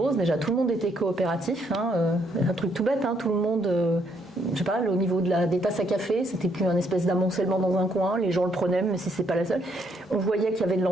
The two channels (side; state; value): both; normal; correlation 0.71